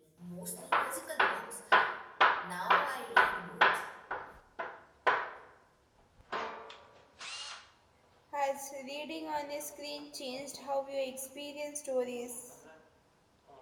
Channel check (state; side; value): identical; both; correlation 1.00